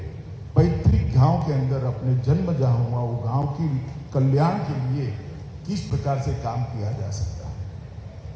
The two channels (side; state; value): both; identical; correlation 1.00